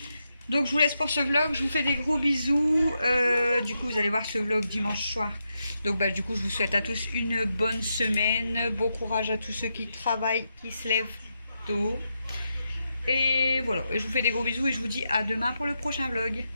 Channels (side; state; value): both; inverted; correlation -0.85